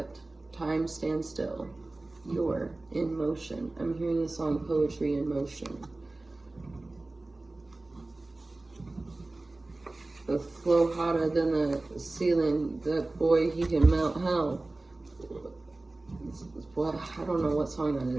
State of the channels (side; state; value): left; quieter; 3.0 dB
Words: time stands still. You're in motion. I'm hearing the song Poetry in Motion. The flow hotter than the ceiling. That boy, he can melt hell. What? I don't know what song